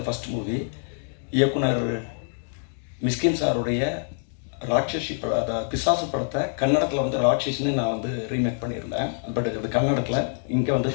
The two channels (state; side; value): silent; right; digital silence